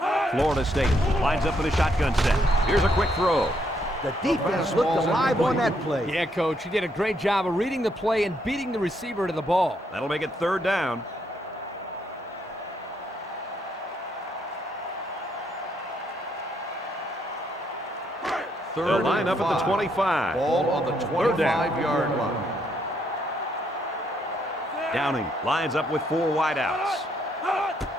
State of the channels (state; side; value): normal; both; correlation 0.74